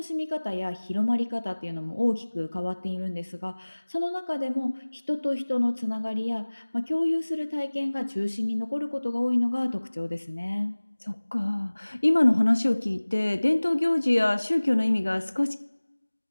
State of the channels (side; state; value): both; inverted; correlation -1.00